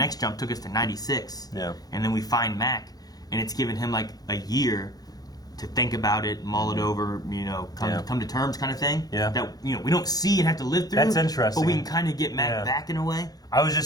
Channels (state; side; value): late; right; 0.19 ms